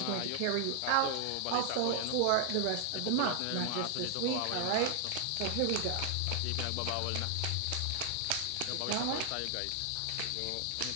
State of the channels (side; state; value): both; different; correlation 0.00